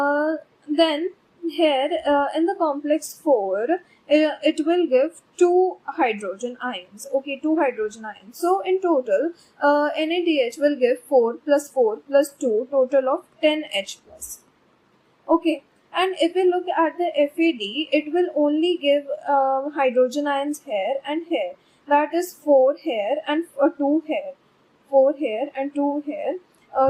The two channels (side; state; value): both; identical; correlation 1.00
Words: Then here in the complex 4, it will give 2 hydrogen ions. Okay, 2 hydrogen ions. So in total, NADH will give 4 plus 4 plus 2, total of 10 H plus. Okay. And if we look at the FAD, it will only give hydrogen ions here and here. That is 4 here and 2 here. 4 here and 2 here.